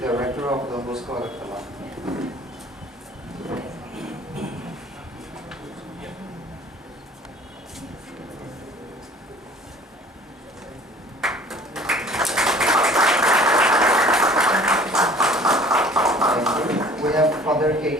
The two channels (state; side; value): normal; both; correlation 0.50